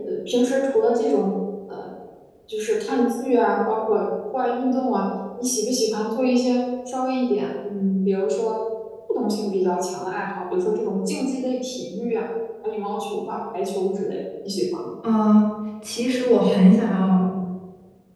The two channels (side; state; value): both; identical; correlation 1.00